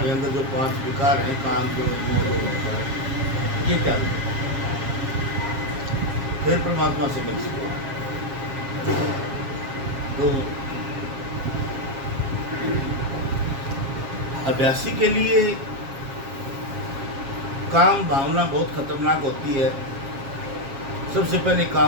अंदर जो 5 विकार हैं, काम, क्रोध, मोह, लोभ, अहंकार, ये त्याग दे, फिर परमात्मा से मिल सको। तो अभ्यासी के लिए काम भावना बहुत खतरनाक होती है। सबसे पहले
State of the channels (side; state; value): left; late; 7.3 ms